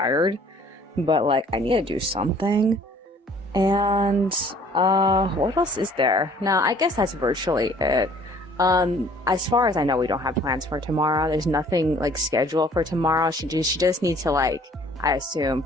But like I need to do something. And what else is there? No, I guess that's virtually it. As far as I know, we don't have plans for tomorrow. There's nothing like scheduled for tomorrow. She just needs to like, I assume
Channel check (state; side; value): normal; both; correlation 0.55